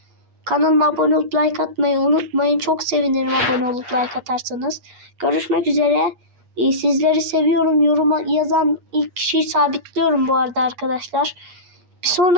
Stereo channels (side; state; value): left; late; 8.4 ms